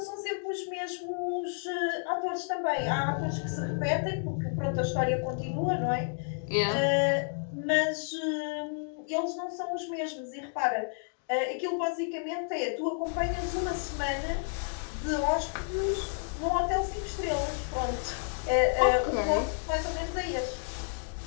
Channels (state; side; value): silent; right; 57 dB below the other